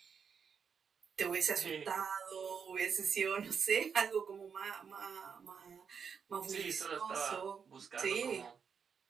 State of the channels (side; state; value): left; quieter; 6.5 dB